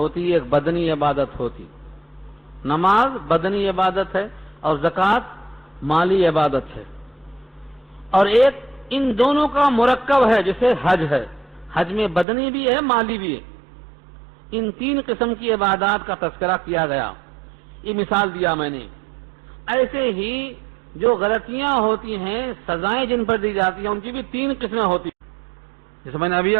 ایک بدنی عبادت ہوتی۔ نماز بدنی عبادت ہے اور زکوٰۃ مالی عبادت ہے، اور ایک ان دونوں کا مرکب ہے جیسے حج ہے، حج میں بدنی بھی ہے مالی بھی ہے۔ ان 3 قسم کی عبادات کا تذکرہ کیا گیا۔ یہ مثال دیا میں نے. ایسے ہی جو غلطیاں ہوتی ہیں، سزائیں جن پر دی جاتی ہیں، ان کی بھی 3 قسمیں ہوتی ہیں. جیسے میں نے ابھی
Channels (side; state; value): left; drops out; at 12.2 s